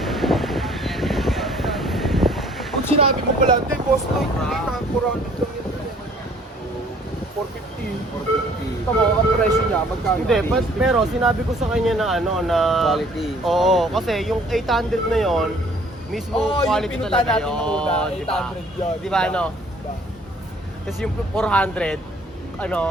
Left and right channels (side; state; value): both; normal; correlation 0.57